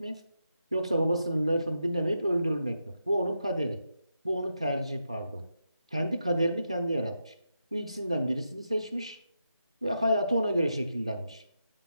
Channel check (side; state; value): both; inverted; correlation -0.86